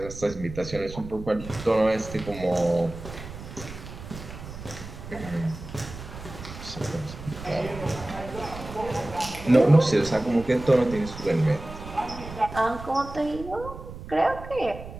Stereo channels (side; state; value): right; noise; rumble, 12 dB below the sound